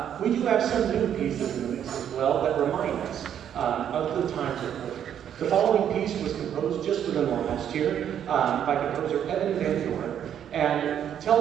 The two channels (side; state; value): left; quieter; 9.4 dB